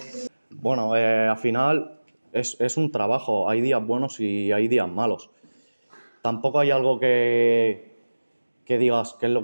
Bueno, al final es un trabajo, hay días buenos y hay días malos. Tampoco hay algo que digas que es lo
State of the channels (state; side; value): inverted; both; correlation -1.00